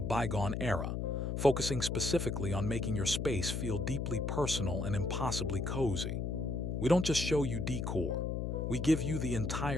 bygone era, focusing specifically on making your space feel deeply personal and impossibly cozy. We don't just show you decor. We give you the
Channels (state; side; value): noise; left; hum, 2 dB below the sound